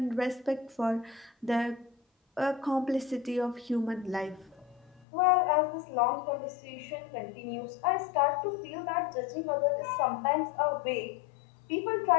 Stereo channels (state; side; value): drops out; right; at 5.1 s